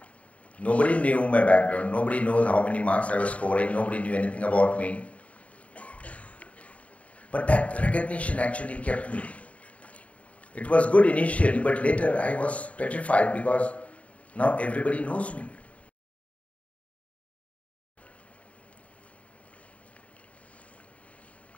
Nobody knew my background, nobody knows how many marks I was scoring, nobody knew anything about me. But that recognition actually kept me. It was good initially, but later I was petrified because now everybody knows me.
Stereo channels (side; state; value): right; late; 0.066 ms